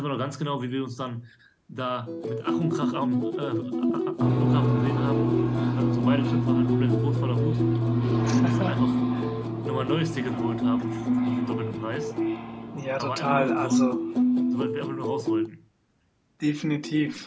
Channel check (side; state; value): both; identical; correlation 1.00